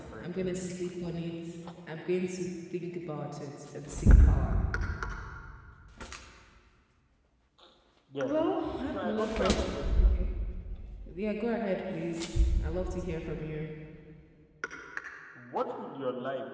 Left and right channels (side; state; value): both; identical; correlation 1.00